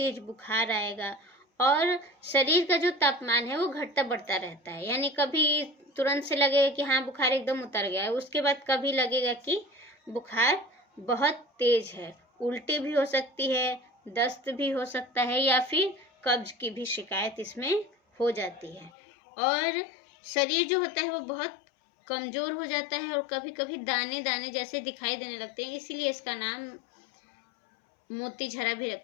बुखार आएगा और शरीर का जो तापमान है वो घटता बढ़ता रहता है। यानी कभी तुरंत से लगेगा कि हाँ बुखार एकदम उतर गया है, उसके बाद कभी लगेगा कि बुखार बहुत तेज है, उल्टी भी हो सकती है, दस्त भी हो सकता है, या फिर कब्ज की भी शिकायत इसमें हो जाती है। और शरीर जो होता है वो बहुत कमजोर हो जाता है और कभी कभी दाने दाने जैसे दिखाई देने लगते हैं, इसीलिए इसका नाम मोती झरा भी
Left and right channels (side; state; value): right; drops out; at 18.9 s